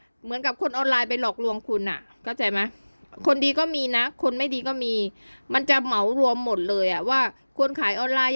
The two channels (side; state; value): both; inverted; correlation -1.00